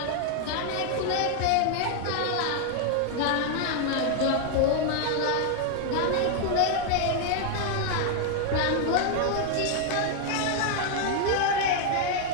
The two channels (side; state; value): both; different; correlation 0.00